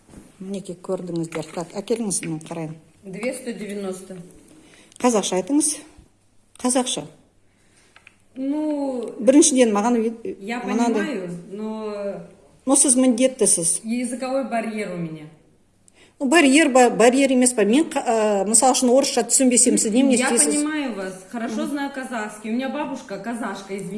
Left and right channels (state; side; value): identical; both; correlation 1.00